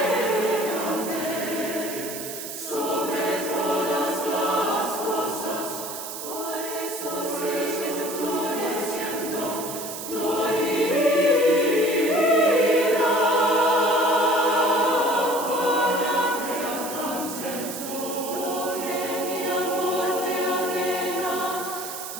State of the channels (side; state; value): right; noise; hiss, 8 dB below the sound